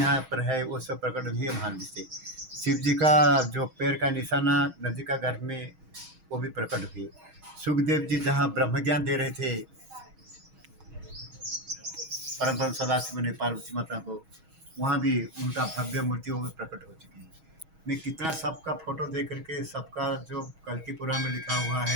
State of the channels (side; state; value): left; late; 6.3 ms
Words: पर है वो सब प्रकट हुए है महानदी से। शिव जी का जो पैर का निशाना नदी का गर्भ में, वो भी प्रकट हुए। सुखदेव जी जहाँ ब्रह्म ज्ञान दे रहे थे परम परम सदाशिव ने पार्वती माता को, वहाँ भी उनका भव्य मूर्ति वो भी प्रकट हो चुकी है। मैं कितना सबका फोटो दे करके, सबका जो कल की पुराण में लिखा हुआ